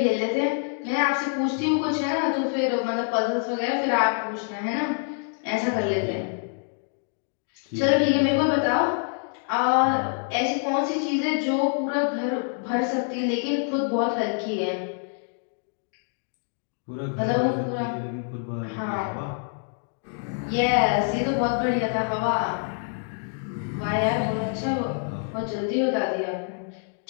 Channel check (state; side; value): silent; right; 55 dB below the other